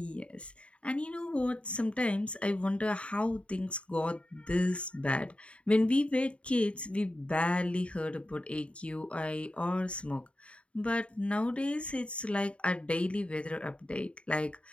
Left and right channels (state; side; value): late; right; 0.060 ms